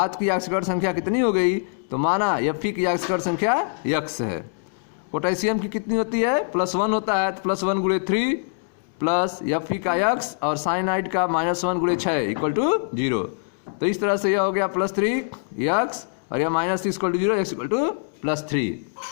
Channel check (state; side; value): silent; right; digital silence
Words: की ऑक्सीकरण संख्या कितनी हो गई। तो माना Fe की ऑक्सीकरण संख्या x है। पोटेशियम की कितनी होती है? +1 होता है, तो +1 × 3 प्लस Fe का x और साइनाइड का -1 × 6 इक्वल टू 0। तो इस तरह से यह हो गया +3x और यह -6 equal to 0, x equal to +3।